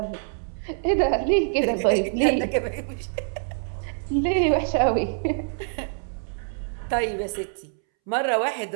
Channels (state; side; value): silent; left; 62 dB below the other